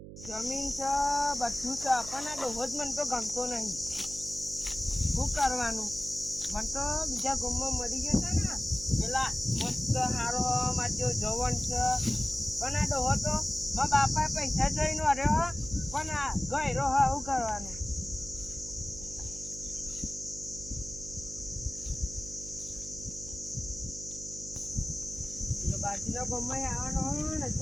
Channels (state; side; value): noise; right; hum, 13 dB below the sound